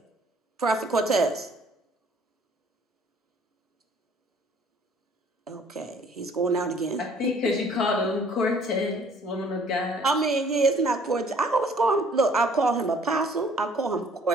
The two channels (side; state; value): both; normal; correlation 0.57